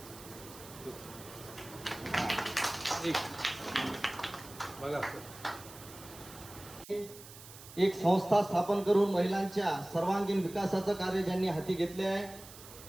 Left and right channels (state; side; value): noise; right; hiss, 17 dB below the sound